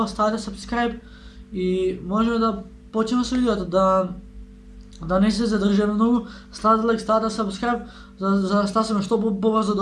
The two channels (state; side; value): identical; both; correlation 1.00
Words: ставате subscribe и можеме да почнеме со видеото, да не се задржаме многу, ставате лайк, ставате subscribe, за да стасаме што побрзо